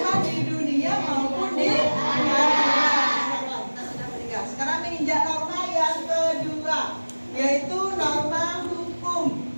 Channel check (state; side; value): inverted; both; correlation -1.00